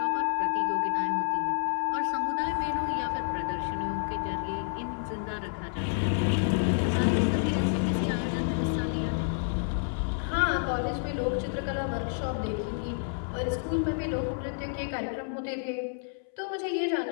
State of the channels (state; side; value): silent; right; 58 dB below the other